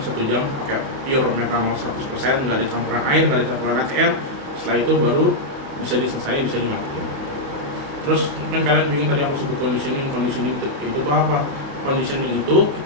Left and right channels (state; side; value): late; left; 28 ms